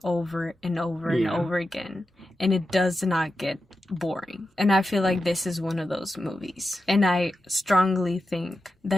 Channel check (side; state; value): both; normal; correlation 0.90